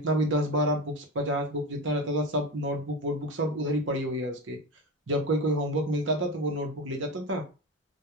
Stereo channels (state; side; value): normal; both; correlation 0.23